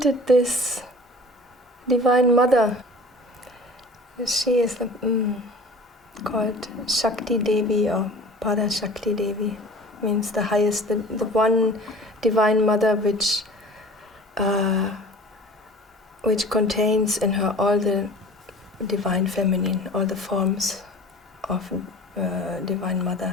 this Divine Mother, she is called SHAKTI Devi or Para SHAKTI Devi, means the highest, the one Divine Mother which contains in her all the Divine Feminine, all the forms of Divine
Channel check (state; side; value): normal; both; correlation 0.44